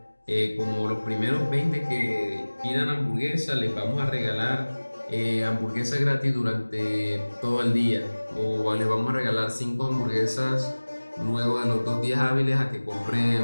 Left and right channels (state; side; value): inverted; both; correlation -1.00